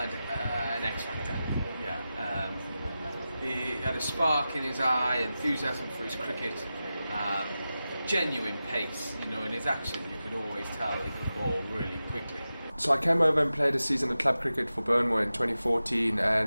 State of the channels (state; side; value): inverted; both; correlation -0.93